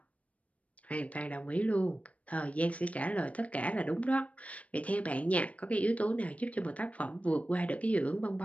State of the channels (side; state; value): right; late; 0.066 ms